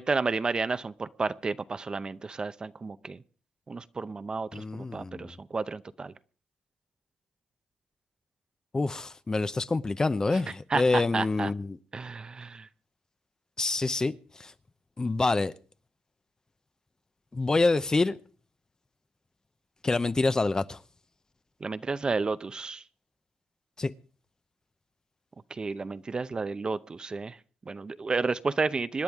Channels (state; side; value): normal; both; correlation 0.90